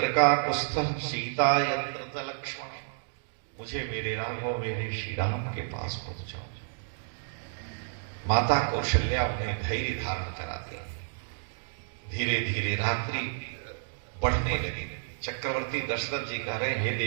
का कुस्थः सीता यत्र च लक्ष्मण, मुझे मेरे राघव मेरे श्री राम के पास पहुंचाओ। माता कौशल्या उन्हें धैर्य धारण कराती। धीरे धीरे रात्रि बढ़ने लगी। चक्रवर्ती दशरथ जी कह रहे, हे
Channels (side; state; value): left; silent; digital silence